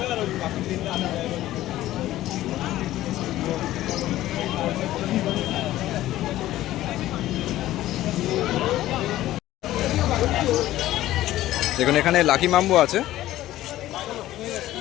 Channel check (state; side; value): quieter; right; 14.8 dB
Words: দেখুন এখানে লাকি বাম্বু আছে।